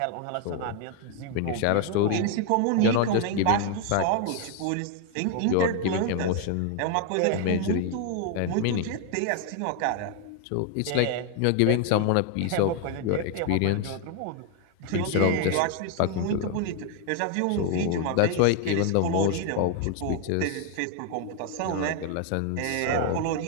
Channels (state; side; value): different; both; correlation 0.00